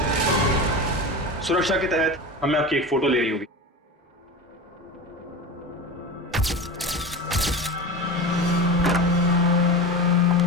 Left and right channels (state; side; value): normal; both; correlation 0.27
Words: सुरक्षा के तहत हमें आपकी एक फोटो ले रही होगी।